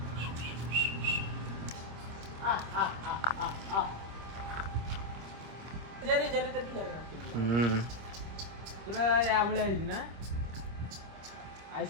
पूरा या बळे आइज ना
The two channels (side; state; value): left; late; 25 ms